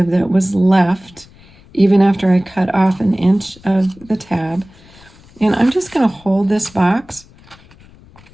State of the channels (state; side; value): noise; left; rumble, 25 dB below the sound